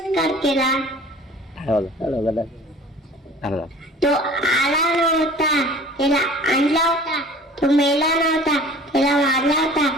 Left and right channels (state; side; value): normal; both; correlation 0.46